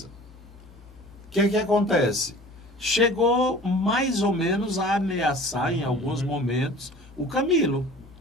O que acontece? Chegou mais ou menos a ameaçar em alguns momentos o Camilo.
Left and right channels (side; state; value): both; normal; correlation 0.44